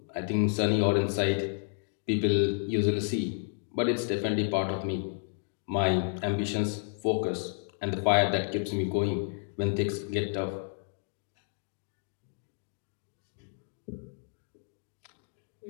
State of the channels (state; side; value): silent; right; digital silence